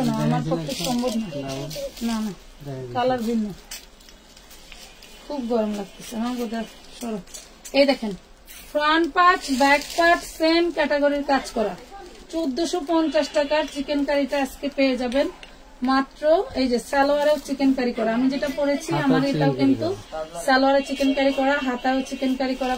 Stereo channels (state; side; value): identical; both; correlation 1.00